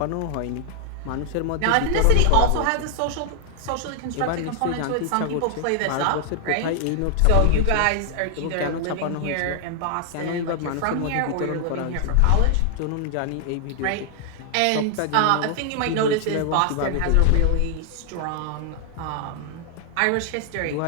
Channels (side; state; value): both; different; correlation 0.00